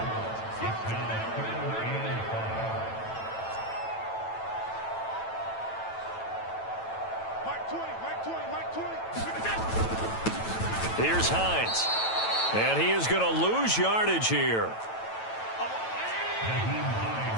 Here's Hines. And he is going to lose yardage here.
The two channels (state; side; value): late; right; 9.1 ms